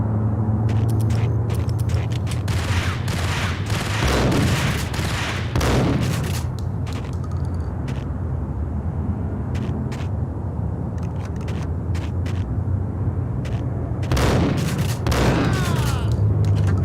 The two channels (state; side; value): identical; both; correlation 1.00